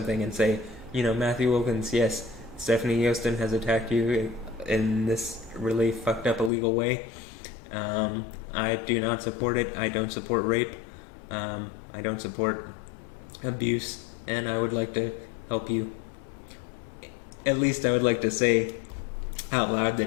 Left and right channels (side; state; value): right; drops out; at 6.5 s